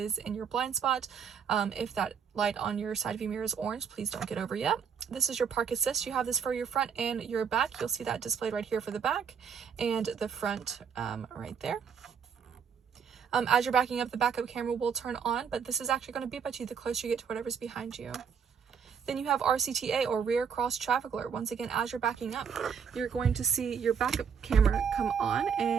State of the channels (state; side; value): quieter; left; 6.9 dB